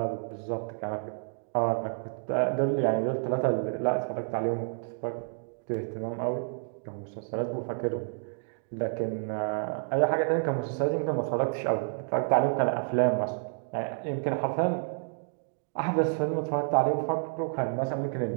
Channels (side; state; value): left; silent; digital silence